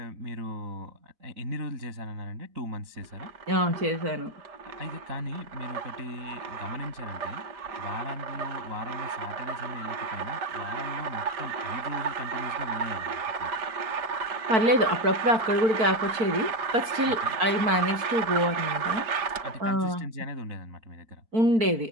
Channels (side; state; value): left; late; 4.5 ms